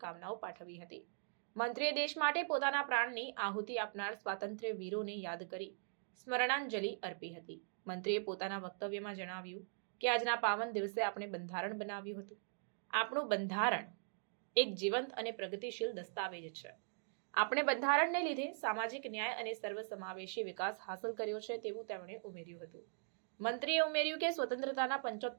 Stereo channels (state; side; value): silent; left; digital silence